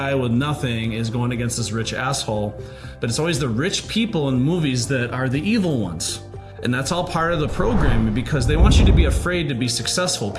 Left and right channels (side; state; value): both; identical; correlation 1.00